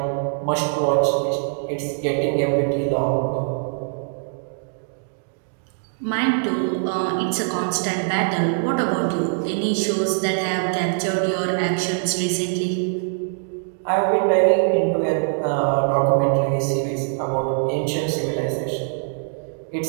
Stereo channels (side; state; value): left; silent; digital silence